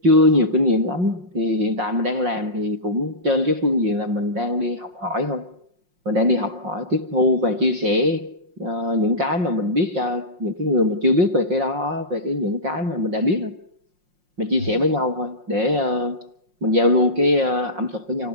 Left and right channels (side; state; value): left; late; 5.6 ms